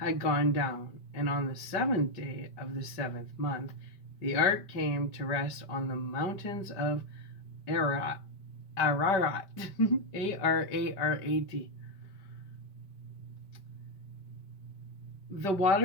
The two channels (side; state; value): right; late; 5.1 ms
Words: gone down, and on the 7th day of the 7th month, the ark came to rest on the mountains of Ararat. A-R-A-R-A-T. The